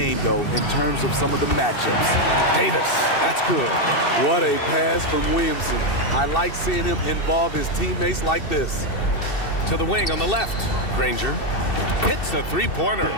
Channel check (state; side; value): late; right; 2.7 ms